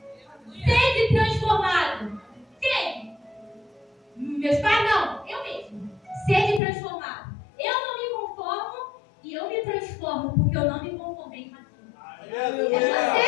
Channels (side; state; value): right; drops out; at 6.6 s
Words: Sede transformado. Quem? Meus pais, não. Eu mesmo. Sede transformado. Eu não me conformo e eu me transformo, porque eu não me conformei com aquilo. É você que